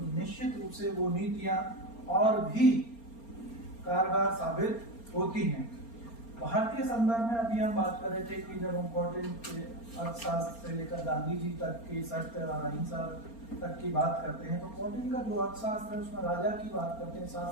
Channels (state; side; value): late; right; 4.3 ms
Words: निश्चित रूप से वो नीतियां और भी कारगर साबित होती हैं। भारतीय संदर्भ में अभी हम बात कर रहे थे कि जब हम पटेल के अर्थशास्त्र से लेकर गांधी जी तक के सत्य और अहिंसा तक की बात करते हैं तो पटेल का जो अर्थशास्त्र है उसमें राजा की बात करते हैं,